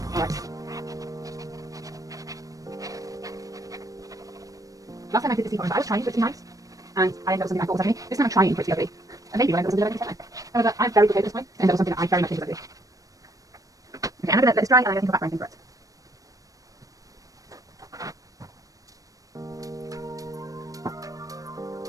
alright. Last time I did this teapot, I was trying for it to be nice, and I ended up with something I thought was ugly. This time I'm trying for it to be ugly. And maybe I ended up with something that I think is ugly. However, I'm very good at this point, and ended up with something that I very much think is ugly. Okay, I'm going to let this dry, and I'm going to think of background for it.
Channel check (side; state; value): left; late; 0.16 ms